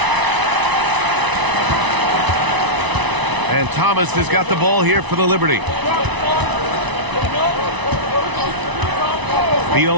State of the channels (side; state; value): left; late; 1.0 ms